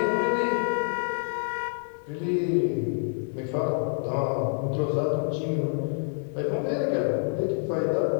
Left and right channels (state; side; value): silent; right; digital silence